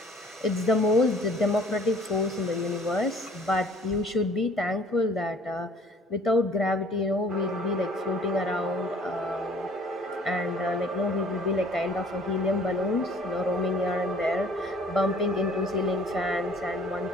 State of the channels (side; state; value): both; normal; correlation 0.54